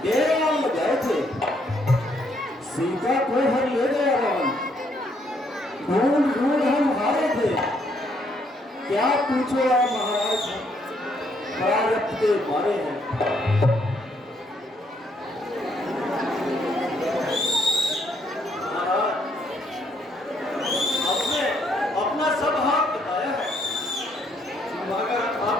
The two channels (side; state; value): both; normal; correlation 0.71